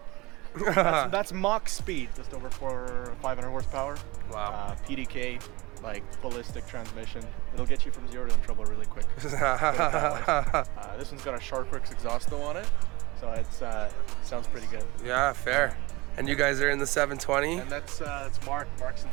That's Mach speed, just over 500 horsepower. Wow. PDK, like ballistic transmission. It'll get you from 0 to in trouble really quick. Put it that way. This one's got a Sharkworks exhaust though on it, so it's sounds pretty good. Yeah, fair. And you guys are in the 720? And that's Mark. Mark's in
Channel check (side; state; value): left; quieter; 22.9 dB